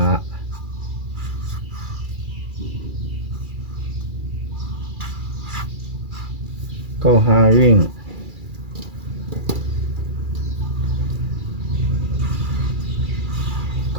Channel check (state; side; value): late; left; 2.3 ms